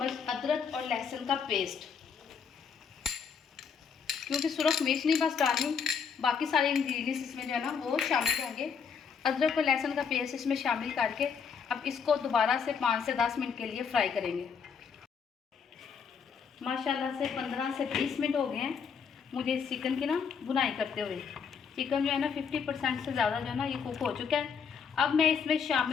अदरक और लहसुन का पेस्ट। क्योंकि सुरख मिर्च नहीं बस डालनी, बाकी सारे इंग्रेडिएंट्स इसमें जो है ना वो शामिल होंगे। अदरक और लहसुन का पेस्ट इसमें शामिल करके अब इसको दोबारा से 5 से 10 मिनट के लिए फ्राई करेंगे। माशाल्लाह से 15 से 20 मिनट हो गए हैं मुझे इस चिकन की ना बुनाई करते हुए। चिकन जो है ना 50% से ज़्यादा जो है ना ये कुक हो चुका है। अब मैं इसमें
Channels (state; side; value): quieter; right; 6.4 dB